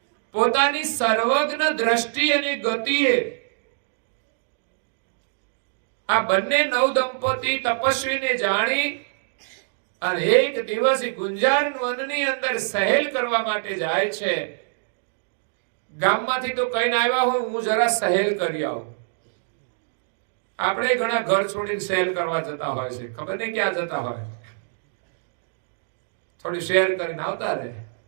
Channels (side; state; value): left; silent; digital silence